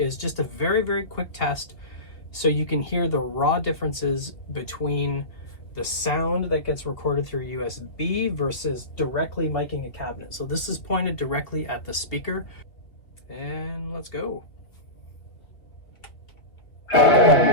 just a very, very quick test so you can hear the raw differences between the sound that gets recorded through USB versus directly miking a cabinet. So this is pointed directly at the speaker, and let's go.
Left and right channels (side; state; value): right; late; 2.6 ms